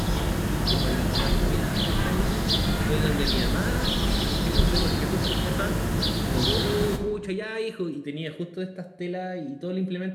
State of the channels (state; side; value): identical; both; correlation 1.00